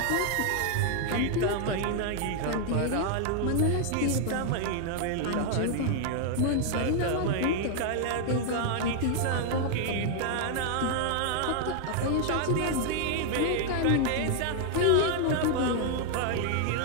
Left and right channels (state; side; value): different; both; correlation 0.00